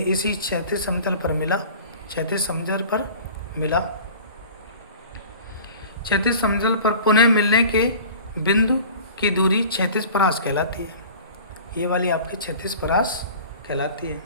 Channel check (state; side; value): inverted; both; correlation -0.42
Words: इसी क्षैतिज समतल पर मिला, क्षैतिज समतल पर मिला। क्षैतिज समतल पर पुनः मिलने के बिंदु की दूरी क्षैतिज परास कहलाती है। ये वाली आपकी क्षैतिज परास कहलाती है।